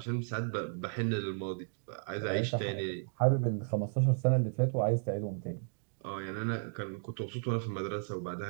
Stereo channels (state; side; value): silent; left; digital silence